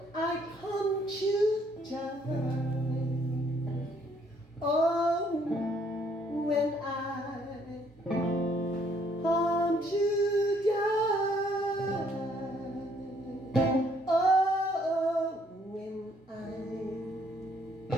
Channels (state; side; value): normal; both; correlation 0.66